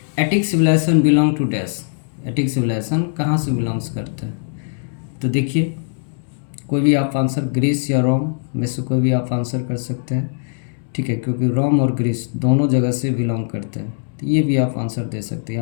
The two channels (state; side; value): silent; right; digital silence